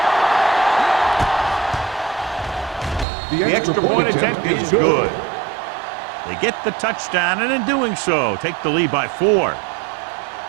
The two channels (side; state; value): left; drops out; at 3.1 s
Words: The extra point attempt is good. They get the touchdown, and in doing so, take the lead by 4.